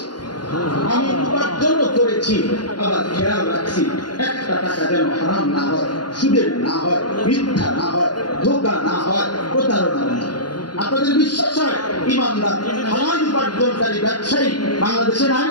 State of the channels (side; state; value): right; late; 0.70 ms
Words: আমি উপার্জন করেছি। আবার খেয়াল রাখছি একটা টাকা যেন হারাম না হয়, সুদের না হয়, মিথ্যা না হয়, ধোঁকা না হয়, প্রতারণা না হয়। আপনাদের বিশ্বাস হয় ইমানদার হালাল উপার্জনকারী ব্যবসায়ী বাংলাদেশে নাই?